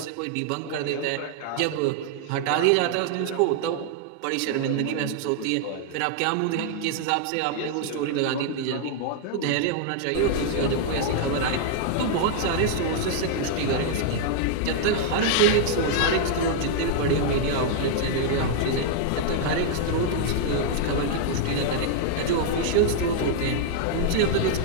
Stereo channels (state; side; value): different; both; correlation 0.00